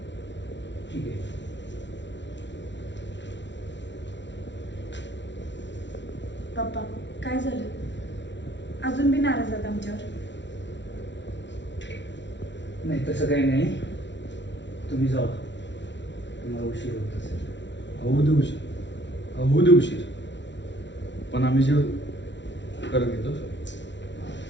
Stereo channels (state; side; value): late; right; 0.52 ms